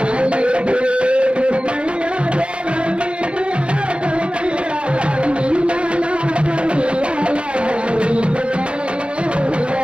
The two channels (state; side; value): late; left; 0.058 ms